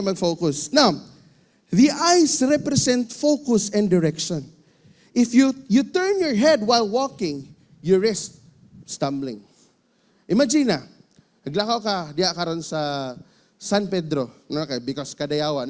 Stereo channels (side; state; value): both; identical; correlation 1.00